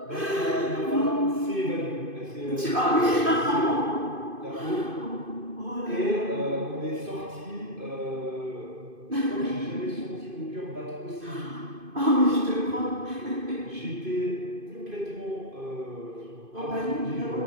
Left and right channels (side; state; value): left; late; 2.5 ms